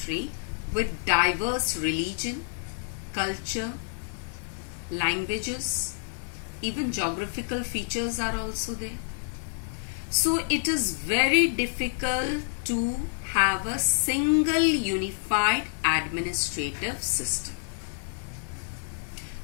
with diverse religion, culture, languages, even geographical features are also there. So it is very difficult to have a single unified administrative system.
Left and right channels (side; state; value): right; silent; 59 dB below the other